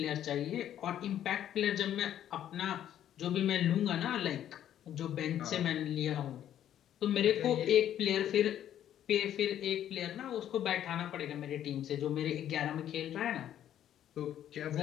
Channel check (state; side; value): quieter; right; 10.9 dB